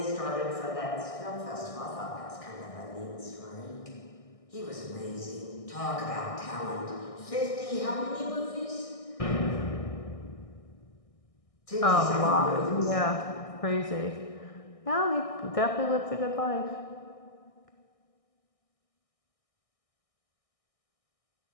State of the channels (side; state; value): right; late; 1.6 ms